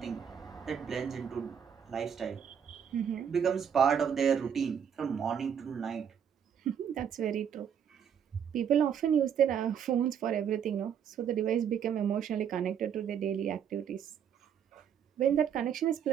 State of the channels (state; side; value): quieter; left; 8.2 dB